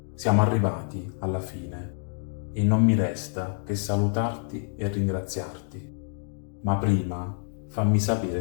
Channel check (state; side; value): silent; right; digital silence